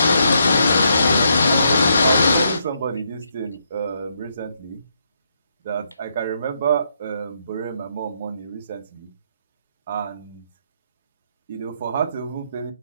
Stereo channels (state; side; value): inverted; both; correlation -0.77